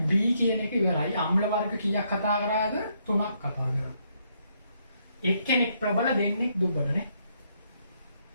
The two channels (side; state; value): both; inverted; correlation -0.74